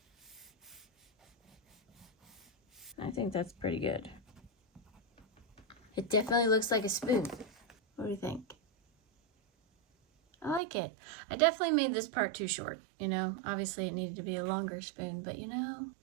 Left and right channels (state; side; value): drops out; left; at 10.6 s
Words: I think that's pretty good. It definitely looks like a spoon. What do you think? I like it. I definitely made this part too short, you know. Obviously it needed to be a longer spoon, but you know,